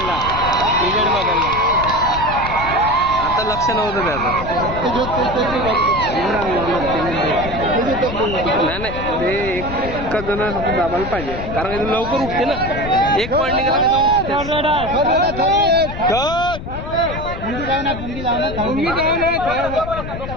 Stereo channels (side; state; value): left; noise; rumble, 8 dB below the sound